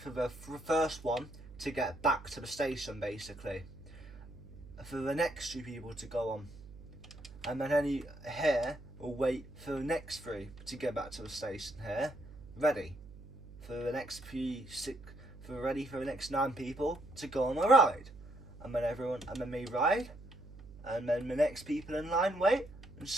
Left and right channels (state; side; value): noise; right; hum, 17 dB below the sound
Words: the first one to get back to the station basically, for the next two people to go on, and then any here will wait for the next three to get back to the station here, ready for the next ready for the next 9 people to go on the ride, and then they ride, and then the next people in line wait, and